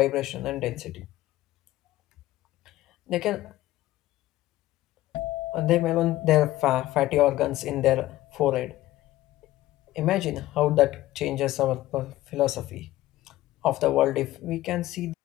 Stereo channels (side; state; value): right; quieter; 15.9 dB